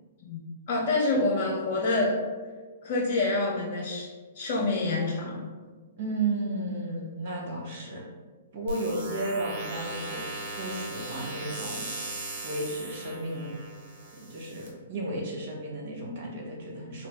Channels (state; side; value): inverted; both; correlation -0.39